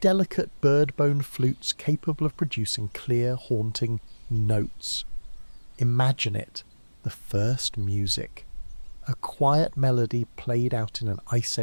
bird-bone flutes capable of producing clear, haunting notes. Imagine it, the first music, a quiet melody played out in an Ice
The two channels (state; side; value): inverted; both; correlation -1.00